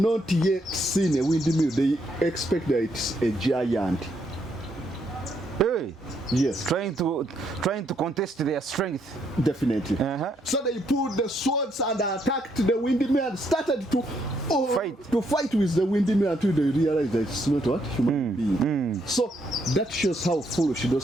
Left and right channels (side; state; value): both; normal; correlation 0.74